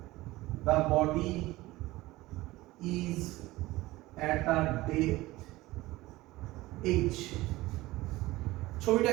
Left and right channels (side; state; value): left; quieter; 18.8 dB